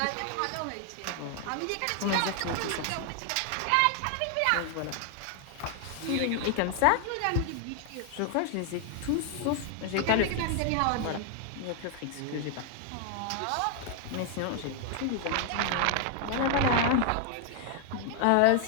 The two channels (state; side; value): different; both; correlation 0.00